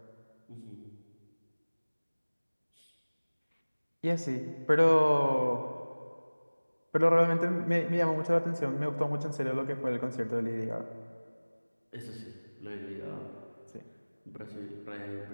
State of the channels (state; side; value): inverted; both; correlation -1.00